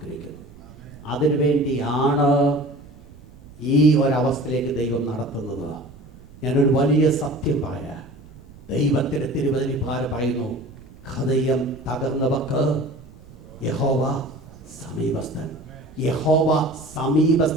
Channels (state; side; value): noise; right; rumble, 21 dB below the sound